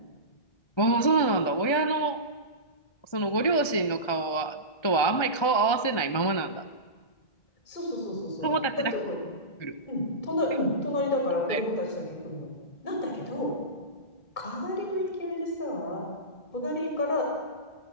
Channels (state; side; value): late; right; 1.3 ms